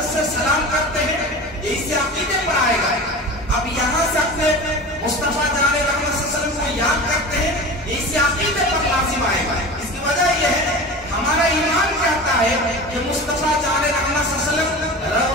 से सलाम करते हैं, ये इसी अकीदे पर आएगा। अब यहाँ से अपने मुस्तफा जाने रहमत सल्लल्लाहु अलैहि वसल्लम को याद करते हैं, ये इसी अकीदे पर लाजिम आएगा। इसकी वजह यह है हमारा ईमान कहता है कि मुस्तफा जाने रहमत सल्लल्लाहु अलैहि वसल्लम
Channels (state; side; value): normal; both; correlation 0.33